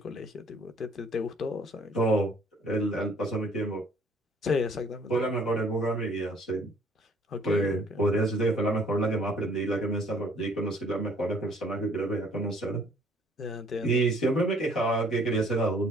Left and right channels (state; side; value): normal; both; correlation 0.59